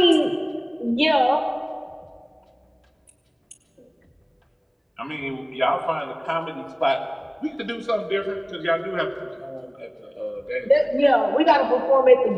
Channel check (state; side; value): identical; both; correlation 1.00